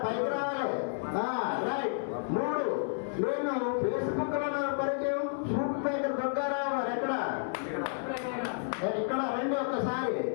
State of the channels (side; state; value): right; silent; 56 dB below the other